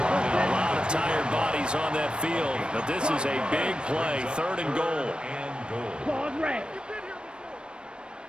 lot of tired bodies on that field, but this is a big play, 3rd and goal. Claws red.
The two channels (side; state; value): left; late; 0.054 ms